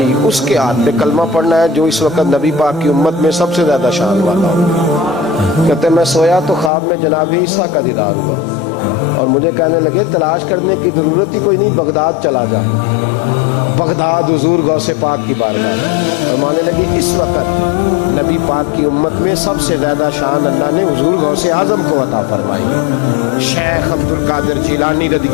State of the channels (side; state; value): right; drops out; at 6.7 s